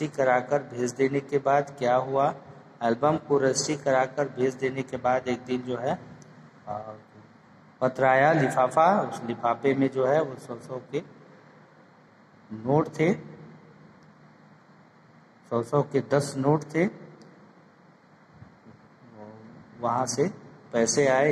कराकर भेज देने के बाद क्या हुआ? एल्बम को रजिस्ट्री कराकर भेज देने के बाद एक दिन जो है पत्र आया, लिफाफा। उस लिफाफे में जो है वो 100 के नोट थे, 100 के 10 नोट थे। वहां से पैसे आए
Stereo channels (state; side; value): identical; both; correlation 1.00